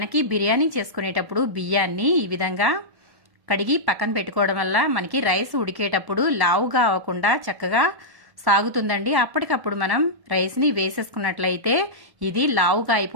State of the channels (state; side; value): late; left; 1.1 ms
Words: బిర్యానీ చేసుకునేటప్పుడు బియ్యాన్ని ఈ విధంగా కడిగి పక్కన పెట్టుకోవడం వల్ల మనకి రైస్ ఉడికేటప్పుడు లావుగా అవ్వకుండా చక్కగా సాగుతుందండి. అప్పటికప్పుడు మనం రైస్ని వేసేసుకున్నట్లయితే ఇది లావుగా